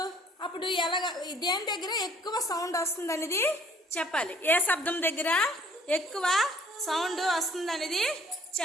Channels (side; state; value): both; normal; correlation 0.58